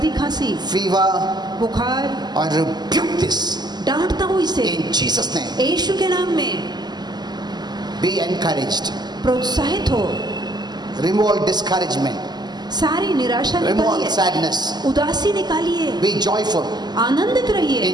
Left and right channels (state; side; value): late; left; 0.20 ms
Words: खांसी, fever, बुखार, I rebuke this डांटता हूँ इसे in Jesus' name. यीशु के नाम में। Be encouraged. प्रोत्साहित हो, Remove all discouragement. सारी निराशा Remove all निकालिए, sadness. उदासी निकालिए, Be joyful आनंदित रहिए